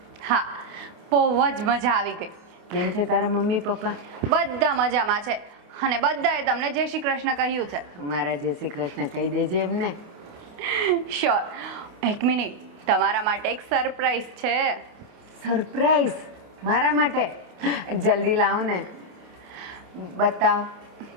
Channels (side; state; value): left; late; 28 ms